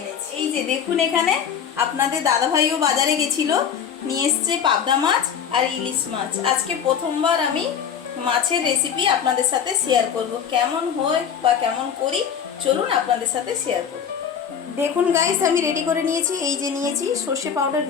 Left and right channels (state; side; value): quieter; right; 7.8 dB